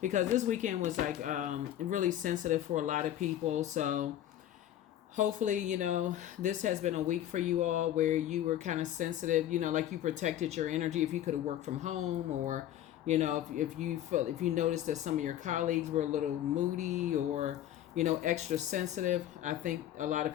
this weekend was like really sensitive for a lot of people. So hopefully, this has been a week for you all where you were kind of sensitive, like you protected your energy if you could have worked from home, or if you felt, if you noticed that some of your colleagues were a little moody or extra sensitive. I think a lot of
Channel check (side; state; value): right; quieter; 11.9 dB